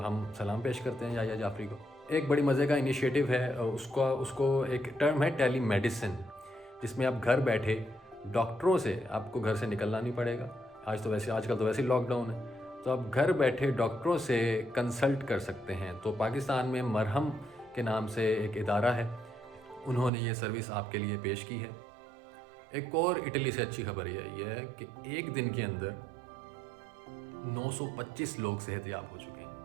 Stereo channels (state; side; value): drops out; left; at 20.1 s